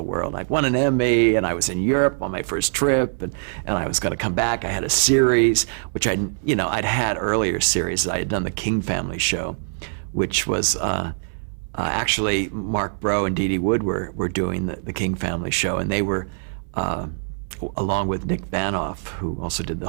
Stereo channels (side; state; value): left; silent; 62 dB below the other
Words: world. I won an Emmy, and I was in Europe on my first trip, and I was going to come back. I had a series, which I'd had earlier series. I had done the King Family show, which was actually Mark Brough and Dee Dee Wood were doing the King Family show, and they were, along with Nick Vanoff, who also did